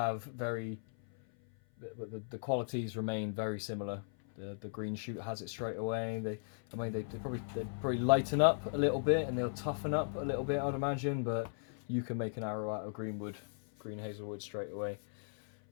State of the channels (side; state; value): right; silent; 53 dB below the other